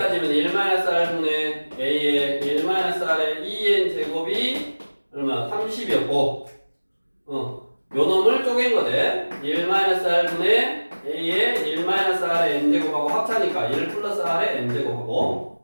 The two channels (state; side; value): inverted; both; correlation -1.00